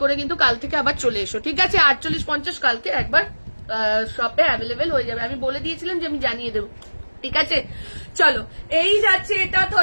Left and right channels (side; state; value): both; inverted; correlation -1.00